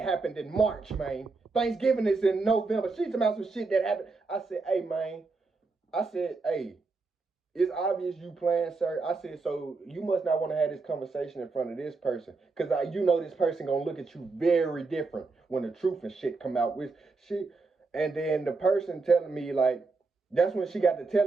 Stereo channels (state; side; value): quieter; left; 4.0 dB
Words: happened in March, man. Thanksgiving is in November. She talking about some shit that happened. I said, hey, man. I said, hey, it's obvious you playing, sir. I said, so you must not want to have this conversation in front of this person. Because you know this person going to look at you very different when the truth and shit come out with shit. And then the person telling me, like, that's when she got to